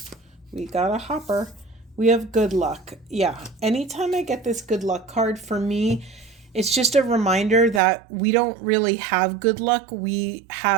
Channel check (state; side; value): drops out; left; at 7.8 s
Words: We got a hopper. We have good luck. Yeah. Anytime I get this good luck card, for me, it's just a reminder that we don't really have good luck. We